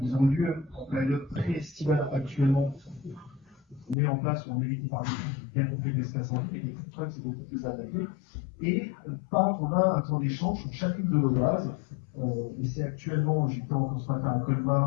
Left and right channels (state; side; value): drops out; right; at 4.0 s